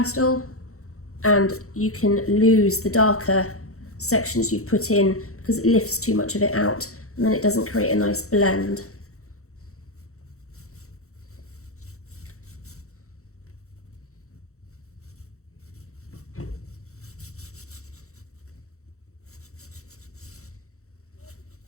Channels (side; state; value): right; late; 0.64 ms